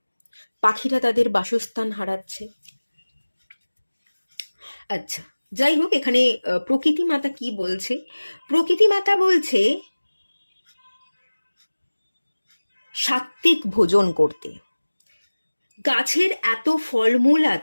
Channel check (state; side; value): inverted; both; correlation -1.00